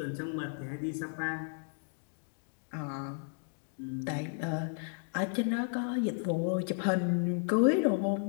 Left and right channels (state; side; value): silent; right; 55 dB below the other